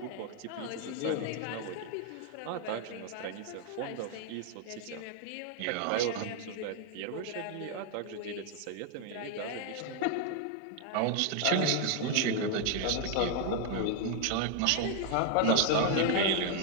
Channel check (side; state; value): both; different; correlation 0.01